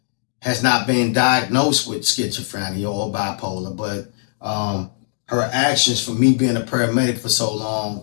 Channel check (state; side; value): silent; right; digital silence